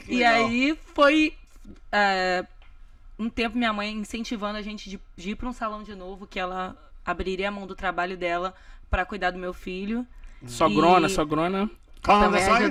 E aí foi um tempo minha mãe incentivando a gente de ir para um salão de novo, que ela abriria a mão do trabalho dela para cuidar do meu filho. Sogrona. Também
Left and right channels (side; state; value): both; identical; correlation 1.00